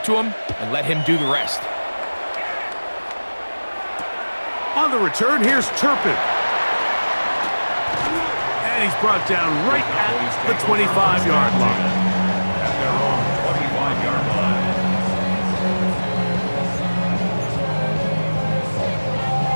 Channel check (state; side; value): inverted; both; correlation -1.00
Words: to him, and let him do the rest. On the return, here's Turpin. And he's brought down right at the 25-yard line. At their own 25-yard line.